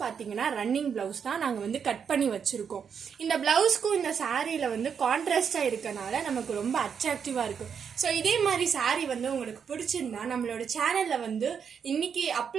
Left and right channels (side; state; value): left; quieter; 7.0 dB